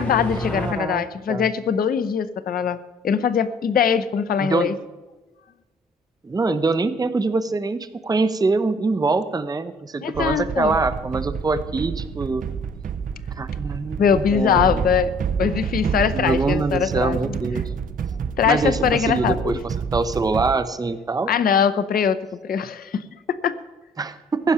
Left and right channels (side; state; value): both; normal; correlation 0.55